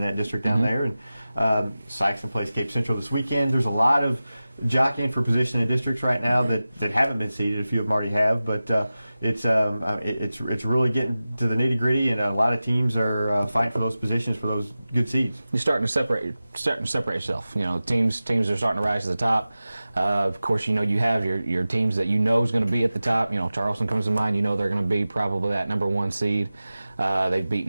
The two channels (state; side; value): inverted; both; correlation -0.95